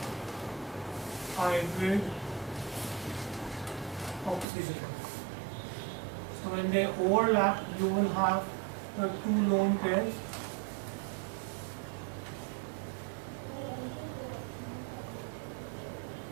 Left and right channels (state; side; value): drops out; left; at 4.5 s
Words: hybrid oxygen. So when they overlap, you will have the two lone pairs.